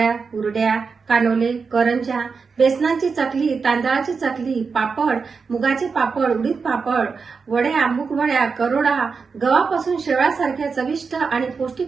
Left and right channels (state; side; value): quieter; left; 5.1 dB